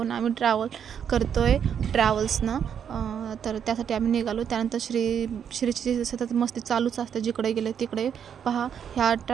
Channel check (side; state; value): left; quieter; 8.2 dB